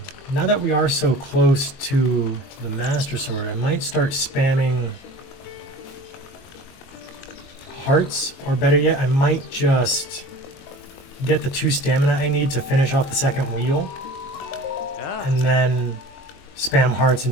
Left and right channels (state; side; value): late; right; 22 ms